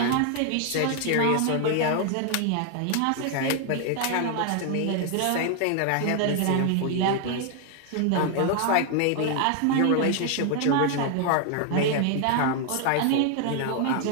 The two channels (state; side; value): different; both; correlation 0.00